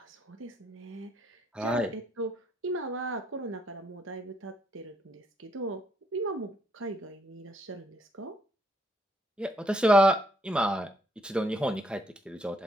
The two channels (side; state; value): both; normal; correlation 0.72